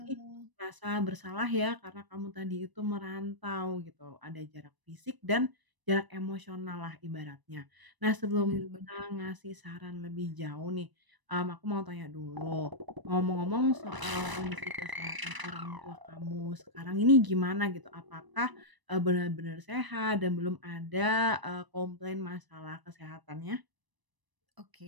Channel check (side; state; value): left; late; 1.0 ms